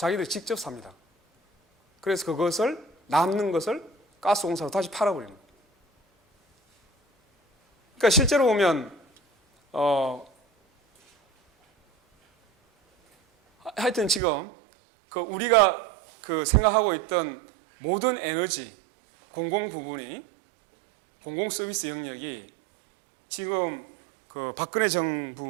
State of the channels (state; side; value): drops out; left; at 14.2 s